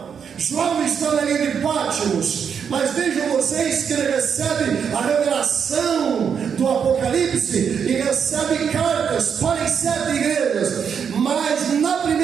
João está na ilha de Patmos, mas vejam vocês que ele recebe a revelação do Apocalipse e recebe cartas para as 7 igrejas, mas na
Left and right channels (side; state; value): left; quieter; 7.2 dB